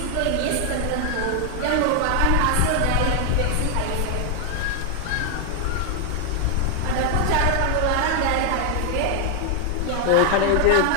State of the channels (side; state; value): both; different; correlation 0.00